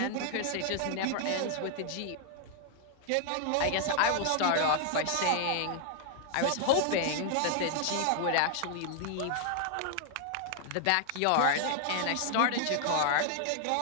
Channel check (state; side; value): different; both; correlation 0.00